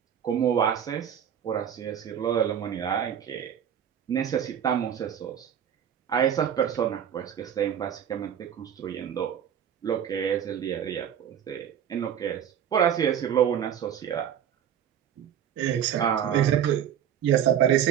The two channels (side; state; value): left; quieter; 9.3 dB